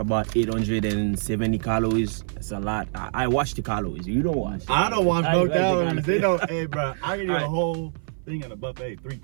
870 calories. That's a lot. I watch the calories. You don't watch. I don't watch I no like the calories. They don't. Hey, bro, I can eat a Alright. whole thing in a buffet, 3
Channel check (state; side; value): silent; left; 56 dB below the other